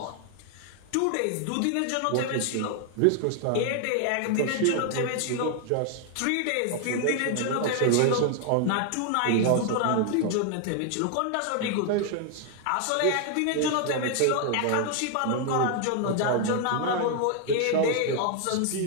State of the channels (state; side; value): different; both; correlation 0.00